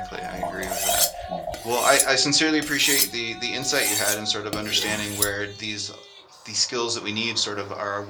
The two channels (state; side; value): identical; both; correlation 1.00